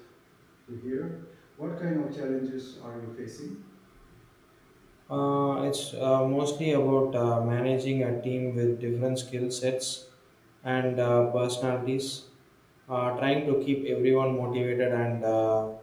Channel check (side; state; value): both; identical; correlation 1.00